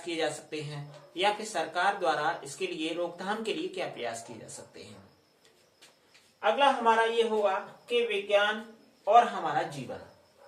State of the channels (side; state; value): both; identical; correlation 1.00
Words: किए जा सकते हैं, या फिर सरकार द्वारा इसके लिए रोकथाम के लिए क्या प्रयास किए जा सकते हैं। अगला हमारा ये होगा कि विज्ञान और हमारा जीवन।